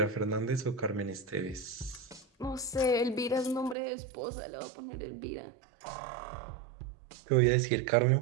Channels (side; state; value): left; drops out; at 3.8 s